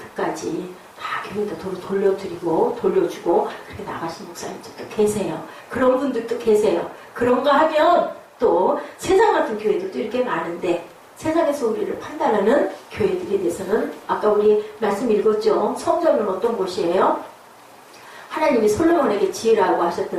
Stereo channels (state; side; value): identical; both; correlation 1.00